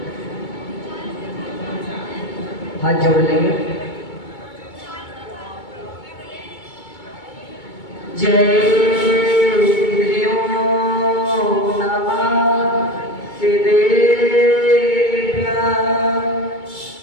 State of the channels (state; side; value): late; right; 2.2 ms